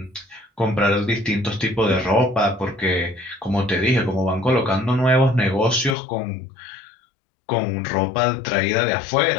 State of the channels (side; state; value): right; drops out; at 6.0 s